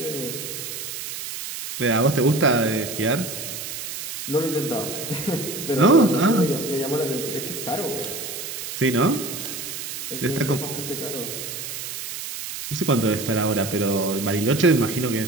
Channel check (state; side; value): noise; right; hiss, 7 dB below the sound